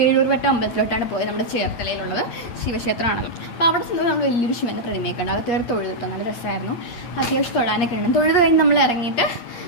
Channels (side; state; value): right; late; 8.8 ms